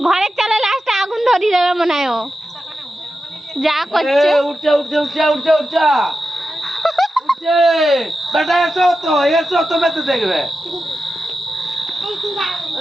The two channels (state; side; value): normal; both; correlation 0.91